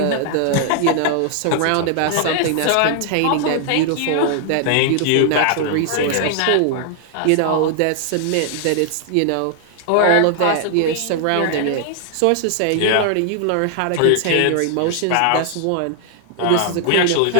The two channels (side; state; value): both; different; correlation 0.00